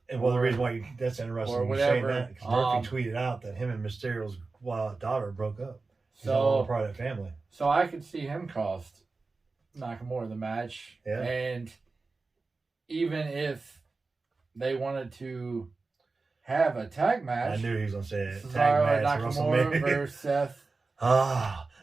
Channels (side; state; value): left; quieter; 3.8 dB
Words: And the reason why that's interesting or you saying whatever. that, because Murphy tweeted out that him and Mysterio's daughter broke up. He's So all part of that family. So I could see him cost Nakamura the match. Yeah. And even if they wanted to have a tag match, I knew he was going to say it. Cesaro Tag match, Nakamura versus Seth.